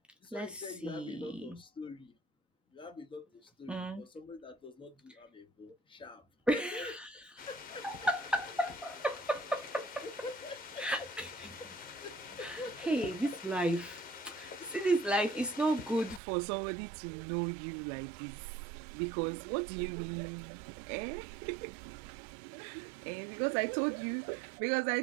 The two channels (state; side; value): drops out; left; at 16.2 s